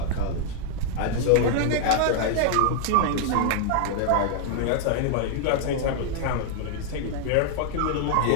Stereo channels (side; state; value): both; different; correlation -0.01